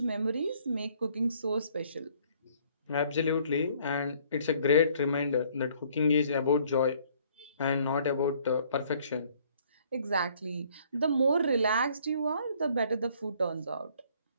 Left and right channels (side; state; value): both; inverted; correlation -0.61